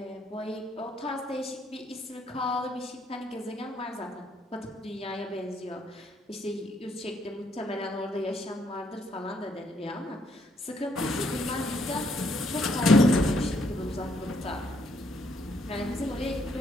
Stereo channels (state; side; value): normal; both; correlation 0.71